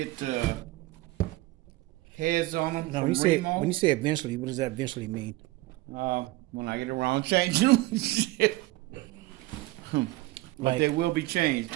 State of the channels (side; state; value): left; quieter; 19.3 dB